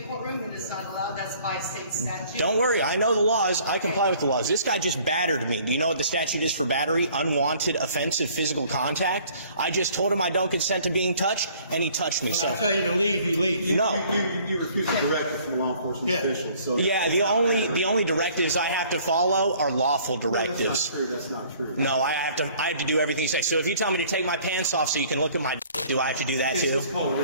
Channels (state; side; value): inverted; both; correlation -0.56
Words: courtroom. It is not allowed. That's by state statute. Don't worry. I know the laws. I comply with the laws. This guy just battered me. Do you know what the statute is for battery? Unwanted offensive physical contact. I just told him I don't consent to being touched, and he touched me. When So I tell you to leave, you leave. no. You refuse a directive from a law enforcement official. So Yeah, the only directives I have to follow are lawful directives. That's not true. No, I have to do everything you say. So if you tell me to take my pants off so you can look at my dick, do I have to do that too? It's called